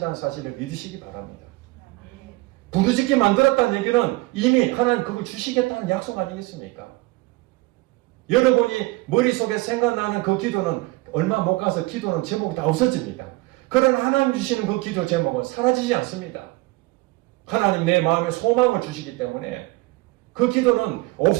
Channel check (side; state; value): left; quieter; 22.0 dB